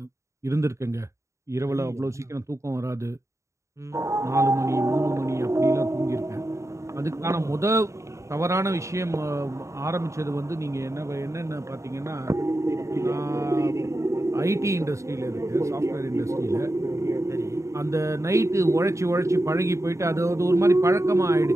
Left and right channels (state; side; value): late; left; 0.14 ms